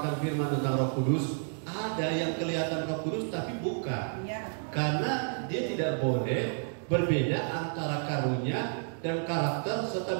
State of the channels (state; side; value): silent; left; 57 dB below the other